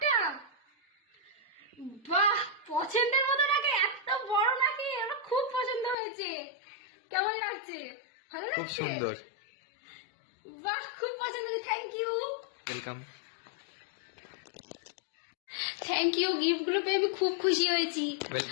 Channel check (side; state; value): right; drops out; at 6.0 s